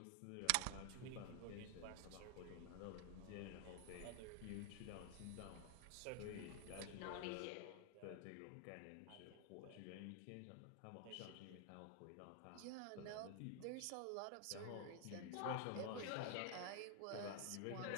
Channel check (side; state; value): both; different; correlation 0.00